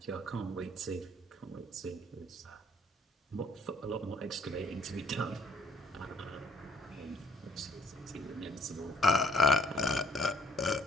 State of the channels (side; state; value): both; normal; correlation 0.64